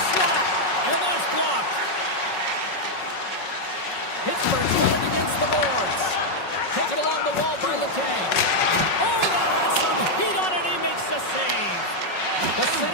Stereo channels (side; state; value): right; late; 5.4 ms